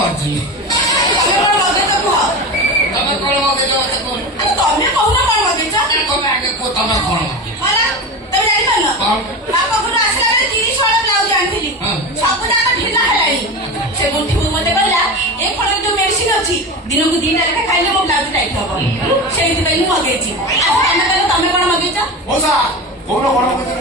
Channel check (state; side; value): normal; both; correlation 0.26